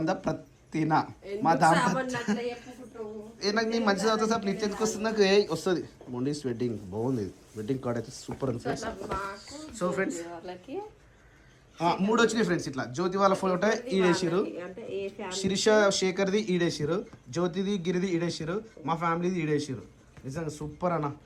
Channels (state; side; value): identical; both; correlation 1.00